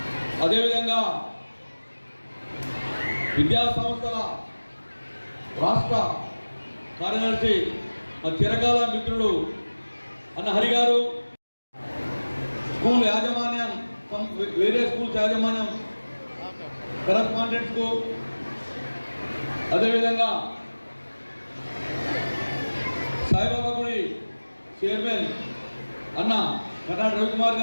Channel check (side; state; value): both; inverted; correlation -1.00